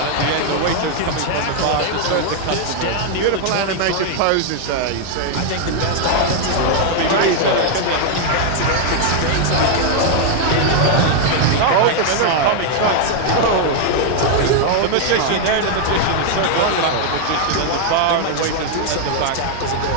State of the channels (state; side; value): different; both; correlation 0.00